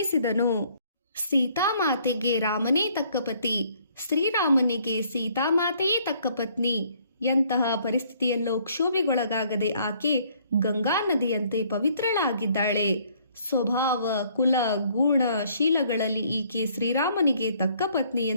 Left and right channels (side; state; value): both; inverted; correlation -0.63